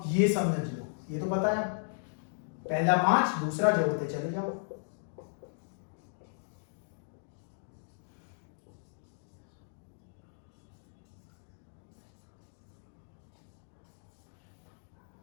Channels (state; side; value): silent; right; digital silence